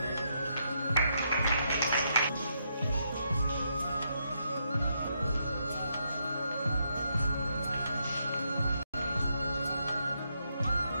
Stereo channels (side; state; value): both; inverted; correlation -0.78